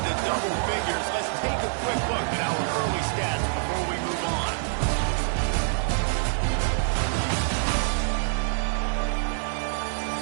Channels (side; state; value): left; silent; digital silence